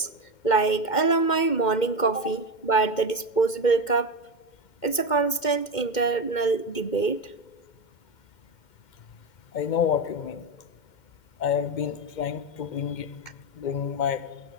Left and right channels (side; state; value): right; late; 2.1 ms